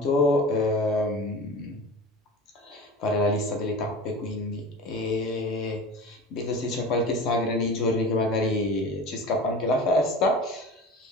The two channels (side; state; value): both; normal; correlation 0.35